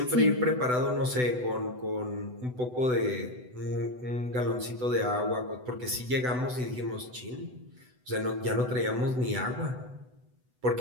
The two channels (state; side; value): late; left; 8.0 ms